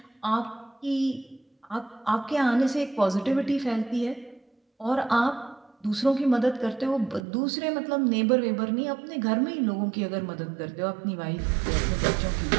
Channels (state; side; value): drops out; left; at 7.2 s